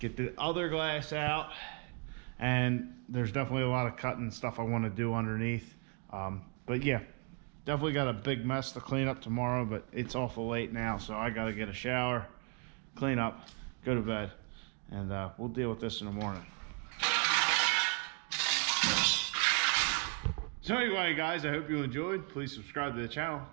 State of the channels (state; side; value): quieter; left; 35.8 dB